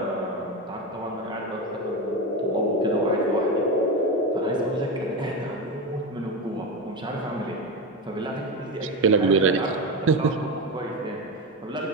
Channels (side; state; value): both; normal; correlation 0.17